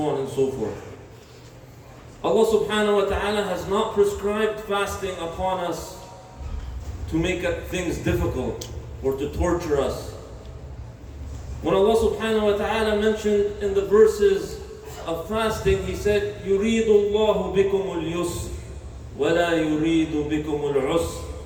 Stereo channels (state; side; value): identical; both; correlation 1.00